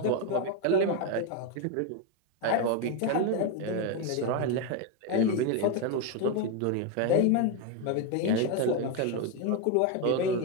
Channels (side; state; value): both; different; correlation 0.02